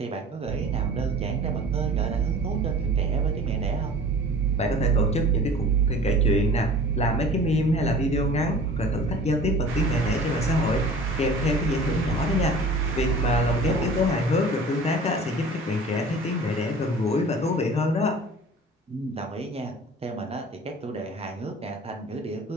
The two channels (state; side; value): normal; both; correlation 0.43